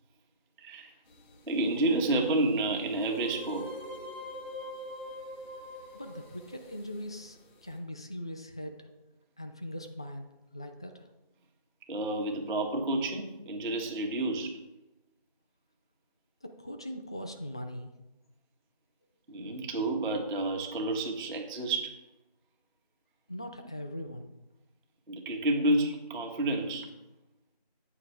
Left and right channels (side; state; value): both; inverted; correlation -0.34